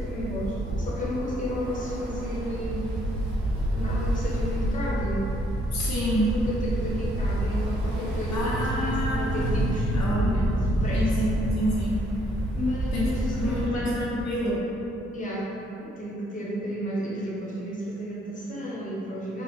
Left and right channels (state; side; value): normal; both; correlation 0.69